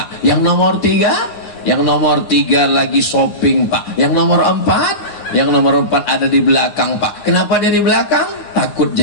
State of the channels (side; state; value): right; late; 9.7 ms